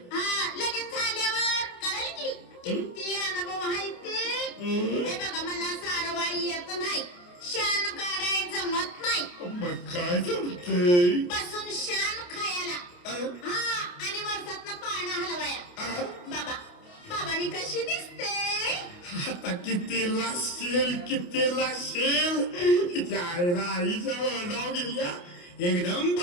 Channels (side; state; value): right; late; 28 ms